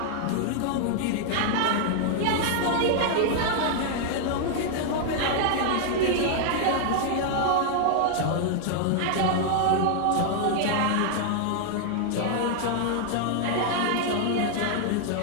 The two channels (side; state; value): both; different; correlation -0.01